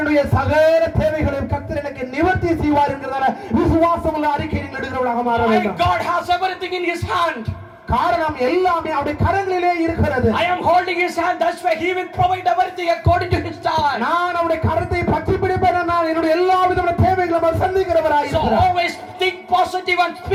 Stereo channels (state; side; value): identical; both; correlation 1.00